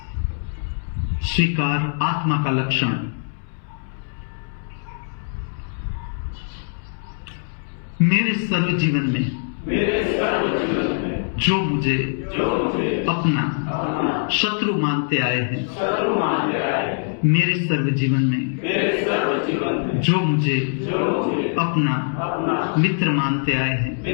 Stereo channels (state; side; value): silent; right; 64 dB below the other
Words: स्वीकार आत्मा का लक्षण। मेरे सर्व जीवन में जो मुझे अपना शत्रु मानते आए हैं, मेरे सर्व जीवन में जो मुझे अपना मित्र मानते आए हैं,